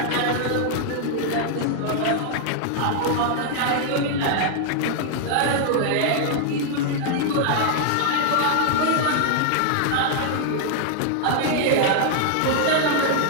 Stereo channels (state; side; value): different; both; correlation 0.00